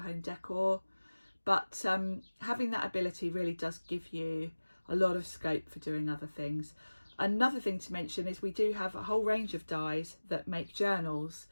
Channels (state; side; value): inverted; both; correlation -1.00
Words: home decor, but having that ability really does give you a lot of scope for doing other things. Another thing to mention is we do have a whole range of dies that make journals.